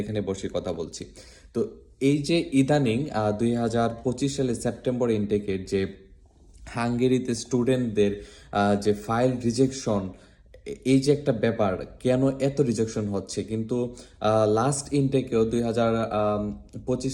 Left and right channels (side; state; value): both; identical; correlation 1.00